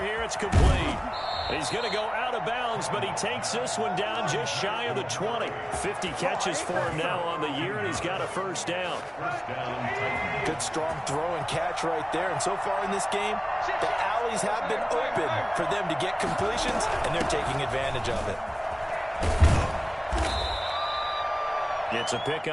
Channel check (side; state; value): both; identical; correlation 1.00